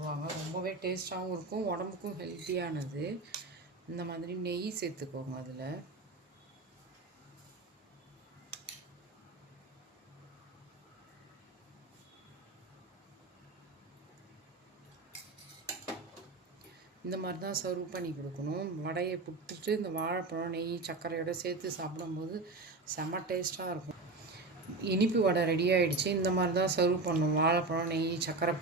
ரொம்பவே டேஸ்ட்டாகவும் இருக்கும், உடம்புக்கும் ஹெல்த்தியானது. இந்த மாதிரி நெய் சேர்த்துக்கோங்க. அதில் இந்த மாதிரி தான் சர்வ் பண்ணி கொடுக்கணும். வடையை புட்டுட்டு இந்த வாழைப்பழம் நெய் சர்க்கரையோடு சேர்த்து சாப்பிடும்போது செம்ம டேஸ்ட்டாக இருக்கும். இனிப்பு வடை ரெடி ஆகிடுச்சு. இந்த மாதிரி தான் சர்வ் பண்ணணும். வாழைப்பழம் நெய் சர்க்கரை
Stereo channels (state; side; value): quieter; left; 3.5 dB